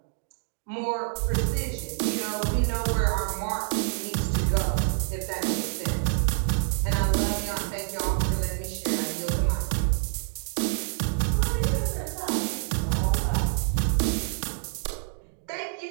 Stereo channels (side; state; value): left; silent; digital silence